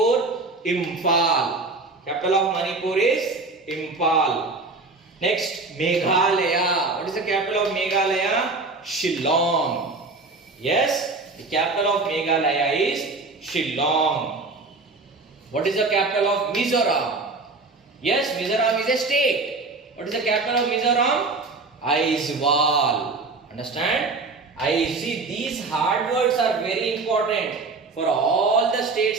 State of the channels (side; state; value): left; quieter; 3.7 dB